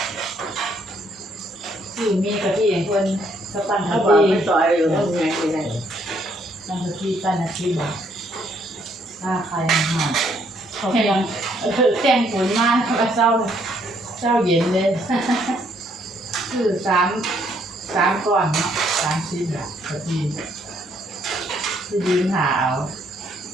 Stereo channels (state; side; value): normal; both; correlation 0.69